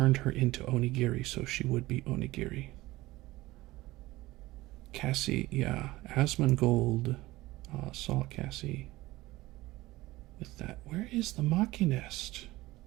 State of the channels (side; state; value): left; quieter; 18.6 dB